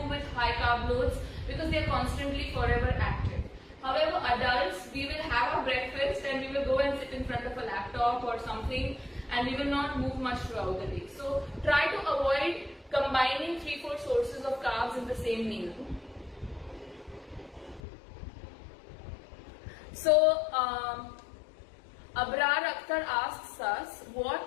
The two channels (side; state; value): right; drops out; at 17.8 s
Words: with high carb loads because they're constantly forever active. However, adults, we will have a breakfast and we will go and sit in front of a laptop or something and we will not move much throughout the day. So try to avoid combining 3-4 sources of carbs in the same meal. So Abrar Akhtar asks us,